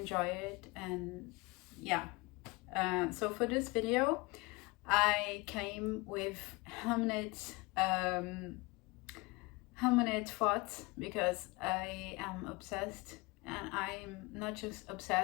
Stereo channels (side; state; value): right; quieter; 24.6 dB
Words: it. And yeah, so for this video I came with Hamnet thoughts, because I am obsessed, and I'm not just